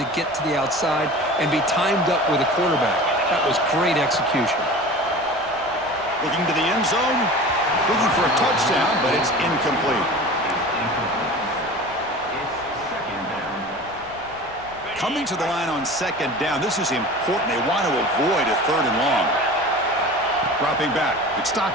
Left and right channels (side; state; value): left; noise; rumble, 25 dB below the sound